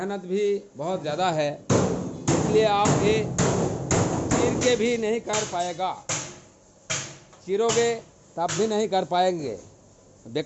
भी बहुत ज़्यादा है। इसलिए आप ये चीर के भी नहीं कर पाएगा, चीरोगे तब भी नहीं कर पाएंगे,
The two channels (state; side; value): identical; both; correlation 1.00